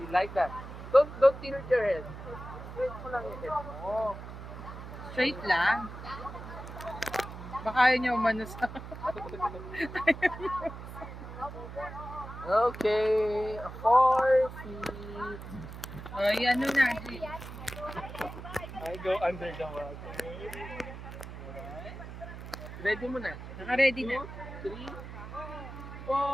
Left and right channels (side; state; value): right; noise; hum, 11 dB below the sound